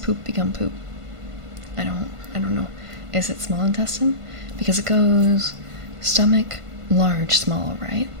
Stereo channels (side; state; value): left; late; 1.5 ms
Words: become poop? I don't know. Is it small intestine? Because it goes stomach, large, small, right?